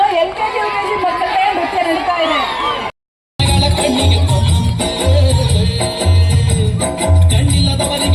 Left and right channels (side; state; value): both; identical; correlation 1.00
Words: LKG UKG ಮಕ್ಕಳೇ ನೃತ್ಯ ನಡೀತಾ ಇದೆ.